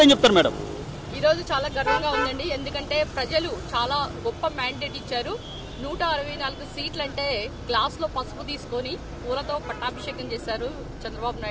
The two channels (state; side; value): identical; both; correlation 1.00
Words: ఏం చెప్తారు మేడం? ఈ రోజు చాలా గర్వంగా ఉందండి. ఎందుకంటే ప్రజలు చాలా గొప్ప మ్యాండేట్ ఇచ్చారు. 164 సీట్లు అంటే గ్లాస్ లో పసుపు తీసుకొని పూలతో పట్టాభిషేకం చేశారు చంద్రబాబు